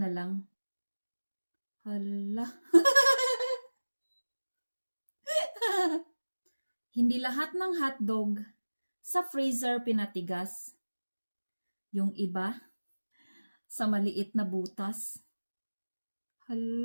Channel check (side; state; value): both; inverted; correlation -1.00